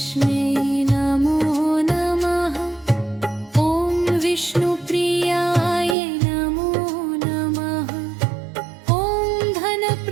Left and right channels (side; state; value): left; drops out; at 6.0 s